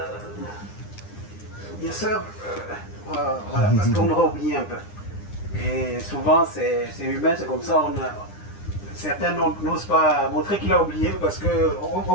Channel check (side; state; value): right; late; 9.9 ms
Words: bien sûr, voilà, parce qu'on aura oublié un peu. Et souvent, c'est humain, c'est comme ça, certains n'osent pas montrer qu'il a oublié parce